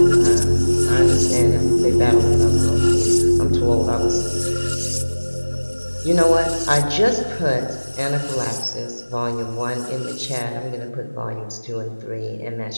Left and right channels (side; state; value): both; inverted; correlation -1.00